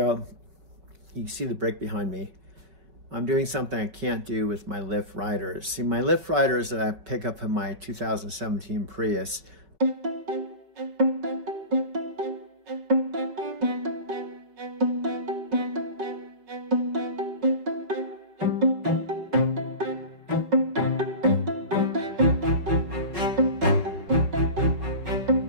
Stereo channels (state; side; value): late; left; 5.3 ms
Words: you can see the brake behind me. I'm doing something I can't do with my Lyft riders. See, my Lyft riders that I pick up in my 2017 Prius,